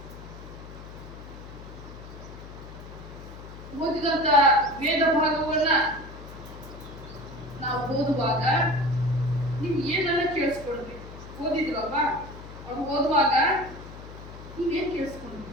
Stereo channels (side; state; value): left; noise; hum, 14 dB below the sound